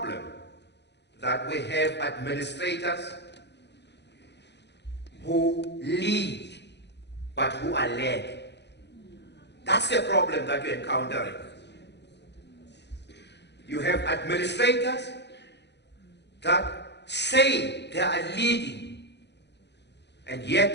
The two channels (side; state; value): right; late; 0.50 ms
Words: that we have administrators who lead but who are led. That's the problem that you're encountering. You have administrators that say they are leading, and